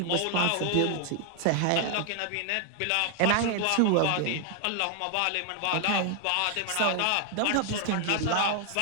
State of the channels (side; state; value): both; different; correlation 0.00